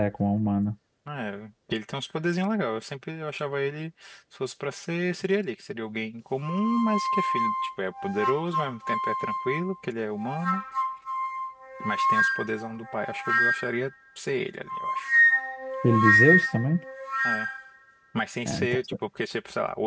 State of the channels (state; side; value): identical; both; correlation 1.00